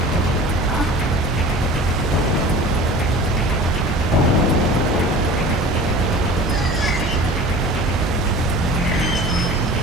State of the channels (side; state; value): both; normal; correlation 0.40